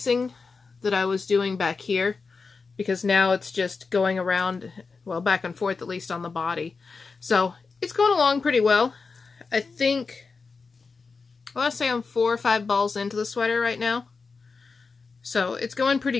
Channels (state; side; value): quieter; right; 4.6 dB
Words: that I was doing back here, because now it's just going around, well, back and forth at least on the body. So it's going along pretty well. I think, I want to say I'm 4 or 5 balls into the sweater right now. So it's going